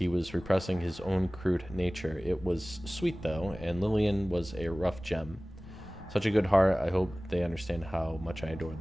was repressing his own crude nature. It was sweet, though, and Lillian was a rough gem. Such a good heart. I hope they understand how much I adore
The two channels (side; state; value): both; normal; correlation 0.98